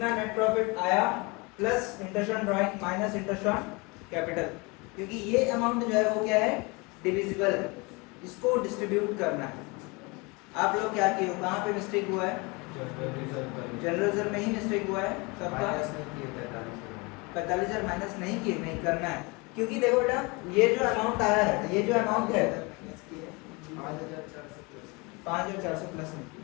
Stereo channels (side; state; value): right; quieter; 27.4 dB